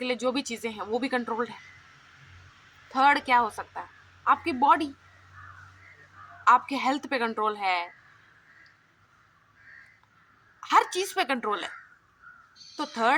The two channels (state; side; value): identical; both; correlation 1.00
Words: लिए जो भी चीज़ें हैं वो भी कंट्रोल्ड है। थर्ड क्या हो सकता है, आपकी बॉडी, आपके हेल्थ पे कंट्रोल है, हर चीज़ पे कंट्रोल है। तो